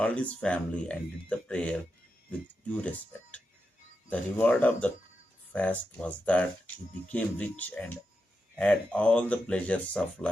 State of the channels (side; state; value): both; normal; correlation 0.88